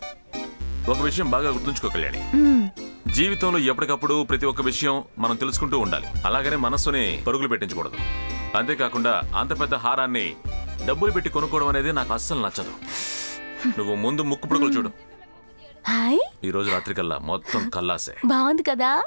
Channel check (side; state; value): both; inverted; correlation -1.00